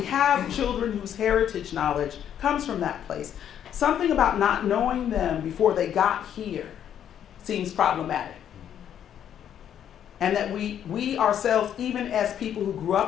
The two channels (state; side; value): quieter; right; 9.7 dB